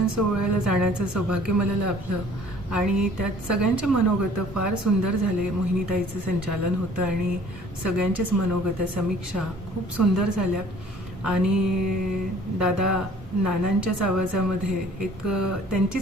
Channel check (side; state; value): both; normal; correlation 0.53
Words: सोहळ्याला जाण्याचं सौभाग्य मला लाभलं आणि त्यात सगळ्यांचे मनोगत फार सुंदर झाले. मोहिनीताईचं संचालन होतं आणि सगळ्यांचेच मनोगत समीक्षा खूप सुंदर झाल्या आणि दादा नानांच्याच आवाजामध्ये एक